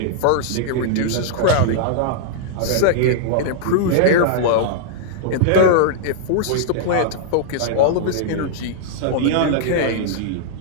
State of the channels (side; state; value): both; different; correlation -0.01